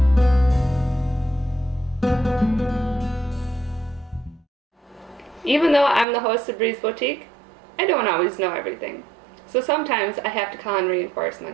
Even though I'm the host of Breeze Boutique, I don't always know everything. So sometimes I have to call in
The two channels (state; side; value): drops out; left; at 6.1 s